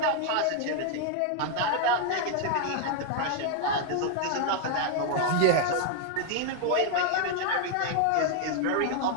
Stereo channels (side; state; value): both; different; correlation 0.00